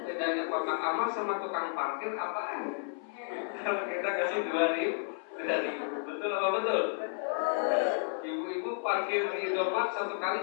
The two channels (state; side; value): silent; right; 56 dB below the other